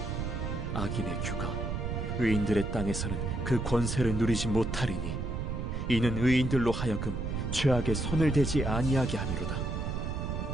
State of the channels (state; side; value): noise; right; rumble, 3 dB below the sound